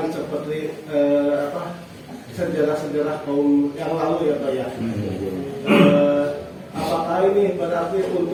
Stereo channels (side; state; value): both; identical; correlation 1.00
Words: seperti sejarah-sejarah kaum yang lalu ya Pak ya. Apakah ini berarti